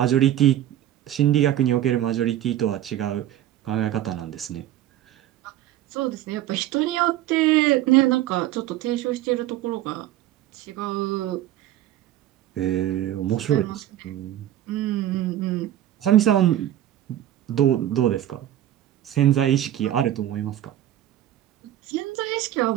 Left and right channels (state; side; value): quieter; left; 12.7 dB